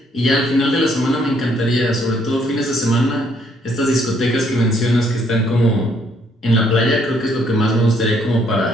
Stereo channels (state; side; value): normal; both; correlation 0.68